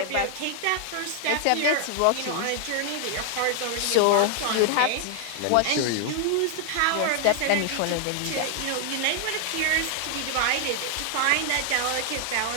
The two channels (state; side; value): different; both; correlation 0.00